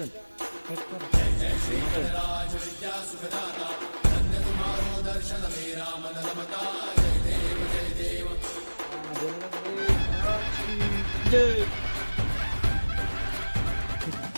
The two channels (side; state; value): both; inverted; correlation -1.00